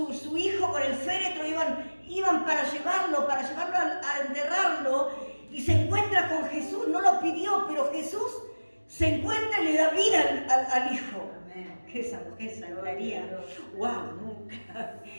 hijo, con el féretro, iban para llevarlo a enterrarlo, y se encuentra con Jesús. No lo pidió, pero Jesús se encuentra y le da vida al hijo. Que esa mujer se lograría. ¡Wow! Nunca.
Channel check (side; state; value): both; inverted; correlation -1.00